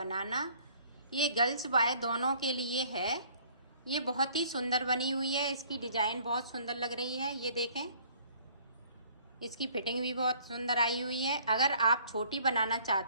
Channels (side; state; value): both; inverted; correlation -0.57